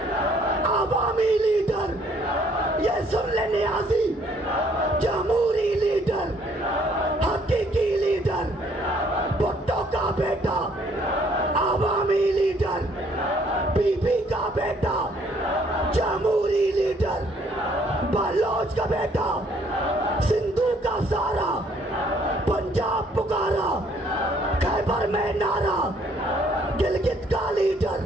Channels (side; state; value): both; normal; correlation 0.64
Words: आवामी लीडर, ये सुन ले नियाजी, जमहूरी लीडर, हकीकी लीडर, भुट्टो का बेटा, आवामी लीडर, बीबी का बेटा, जमहूरी लीडर, बलोच का बेटा, सिंधु का सारा, पंजाब पुकारा, खैबर में नारा, गिलगित का लीडर,